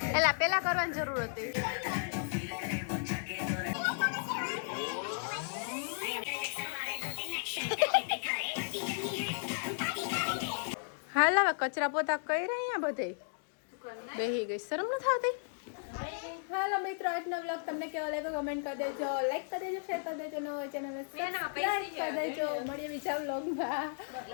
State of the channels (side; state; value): right; silent; digital silence